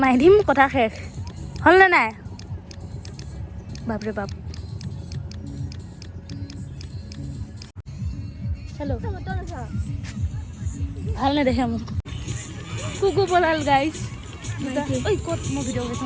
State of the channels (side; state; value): both; identical; correlation 1.00